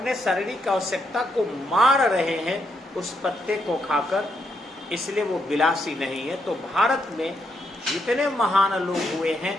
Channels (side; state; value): both; normal; correlation 0.78